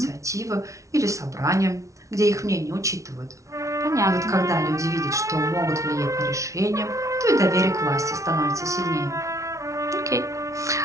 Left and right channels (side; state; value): left; late; 0.15 ms